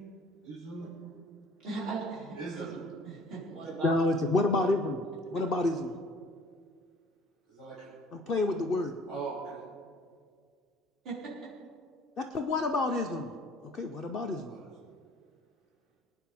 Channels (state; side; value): normal; both; correlation 0.53